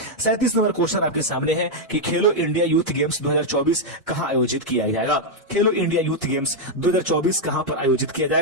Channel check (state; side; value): normal; both; correlation -0.01